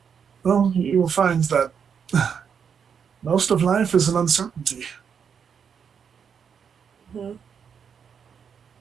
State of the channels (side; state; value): left; quieter; 7.1 dB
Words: Well, you will find that most of life is an uncertainty. Mm-hmm.